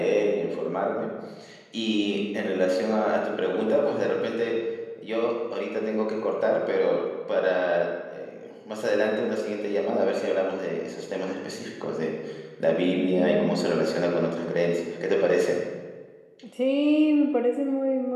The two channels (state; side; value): identical; both; correlation 1.00